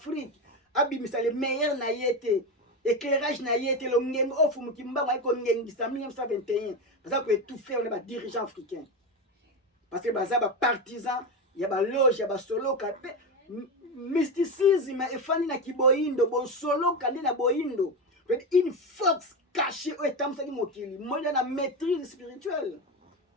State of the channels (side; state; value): both; normal; correlation 0.17